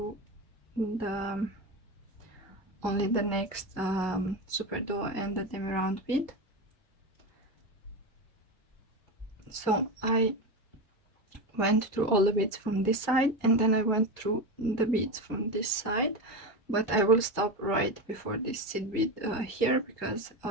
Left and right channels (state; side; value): normal; both; correlation 0.18